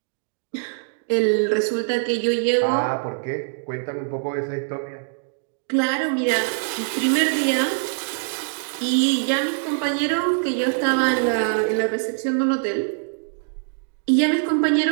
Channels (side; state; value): left; silent; digital silence